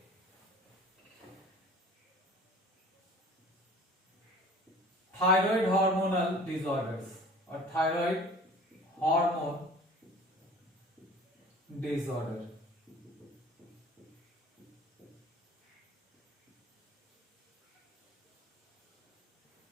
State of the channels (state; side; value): normal; both; correlation 0.46